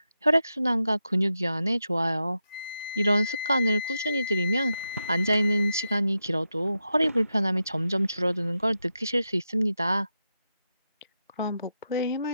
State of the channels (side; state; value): both; inverted; correlation -0.87